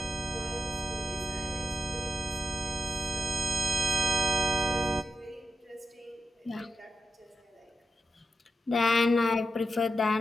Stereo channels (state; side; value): normal; both; correlation 0.90